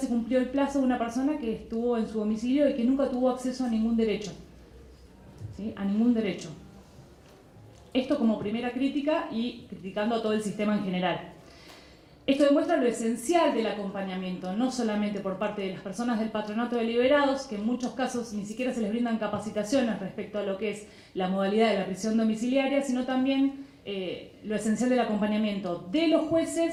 cumplió el plazo de una persona que estuvo en su domicilio y que nunca tuvo acceso a ningún derecho, ¿sí? A ningún derecho. Esto como primera crítica y criticando a todo el sistema en general. Esto demuestra lo esencial del acompañamiento, no solamente por parte de las personas del Patronato de Liberados, que en muchos casos ni siquiera se les brindan capacitaciones respecto a lo que es la modalidad de la prisión domiciliaria, sino también lo esencial del acompañamiento de los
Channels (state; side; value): identical; both; correlation 1.00